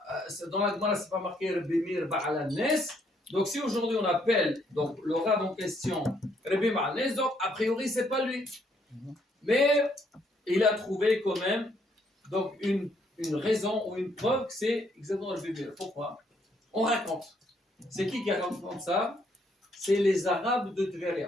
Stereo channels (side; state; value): both; normal; correlation 0.70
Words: dans la Gemara, c'est pas marqué Rabbi Meir Ba'alanes. Donc, si aujourd'hui on appelle donc, le rab en question Rabbi Ba'alanes, donc a priori, c'est pas lui. Mais il a trouvé quand même donc, une raison ou une preuve que c'est exactement Rabbi Meir. Pourquoi? On raconte. C'est qui raconte ça? C'est les Arabes de